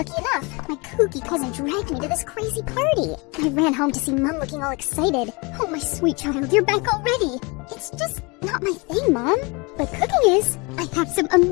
enough, my kooky cousin dragged me to this crazy party. I ran home to see Mom looking all excited. Oh, my sweet child, you're back already. It's just not my thing, Mom. But cooking is. I have some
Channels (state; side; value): quieter; right; 28.2 dB